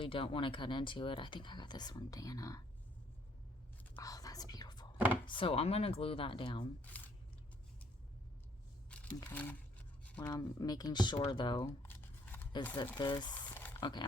don't want to cut into it. I think I got this from Dana. Oh, that's beautiful. So I'm gonna glue that down. Okay, what I'm making sure though is that this, okay,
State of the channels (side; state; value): both; normal; correlation 0.65